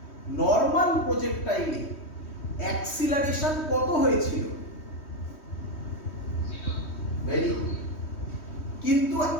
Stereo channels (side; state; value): right; late; 3.2 ms